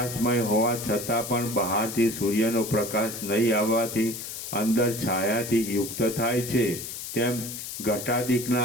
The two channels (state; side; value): noise; left; hiss, 8 dB below the sound